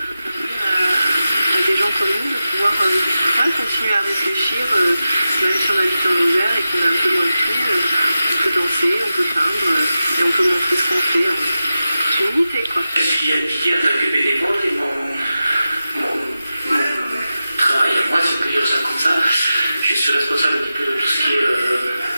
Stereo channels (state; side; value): inverted; both; correlation -0.93